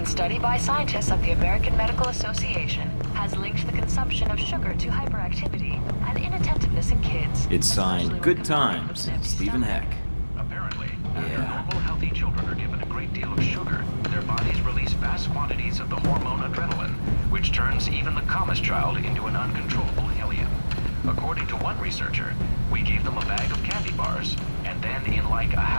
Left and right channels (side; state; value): both; inverted; correlation -1.00